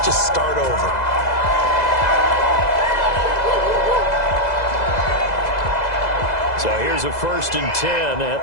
just start over. So here's a 1st and 10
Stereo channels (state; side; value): late; right; 2.0 ms